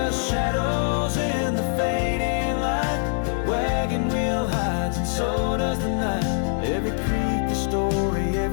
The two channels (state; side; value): silent; right; 63 dB below the other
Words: shadows in the fading light, wagon wheel hides and so does the night. Every creek a story,